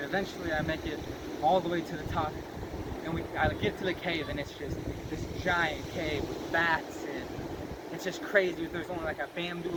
eventually I make it all the way to the top. And I get to the cave, and it's just this giant cave with bats, and it's just crazy. There's only like a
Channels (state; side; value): identical; both; correlation 1.00